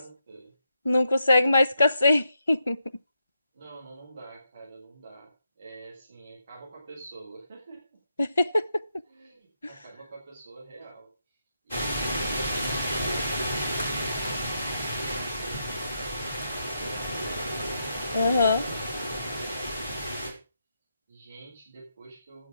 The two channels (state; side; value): inverted; both; correlation -0.82